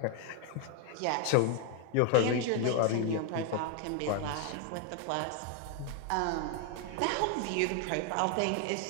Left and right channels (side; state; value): both; different; correlation 0.01